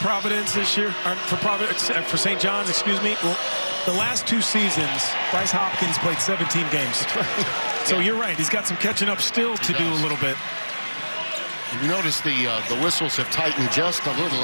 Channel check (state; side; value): inverted; both; correlation -1.00